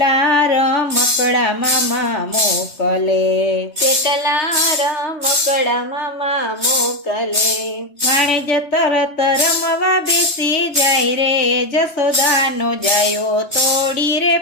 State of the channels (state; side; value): late; right; 3.2 ms